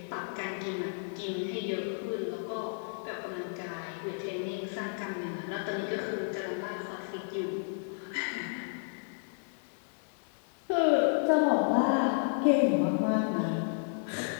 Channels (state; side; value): silent; right; digital silence